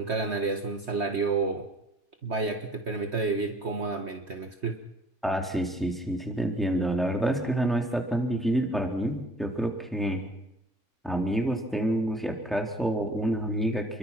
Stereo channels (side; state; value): both; normal; correlation 0.53